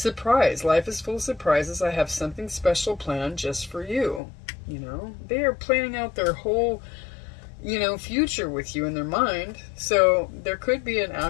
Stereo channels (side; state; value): right; drops out; at 4.2 s